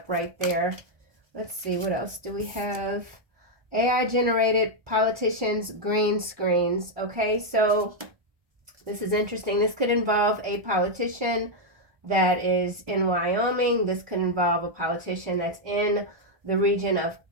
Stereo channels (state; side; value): late; left; 1.2 ms